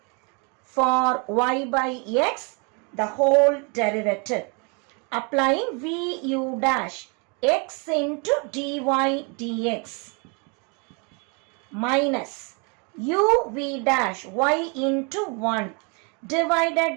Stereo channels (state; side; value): quieter; left; 33.9 dB